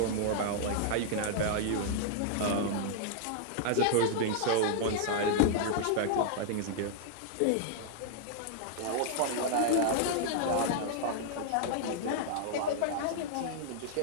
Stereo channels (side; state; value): both; different; correlation -0.01